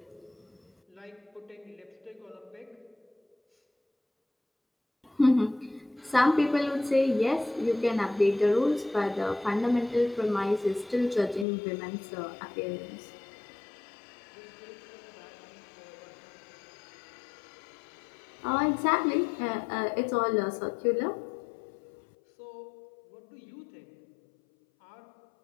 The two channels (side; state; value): right; drops out; at 11.5 s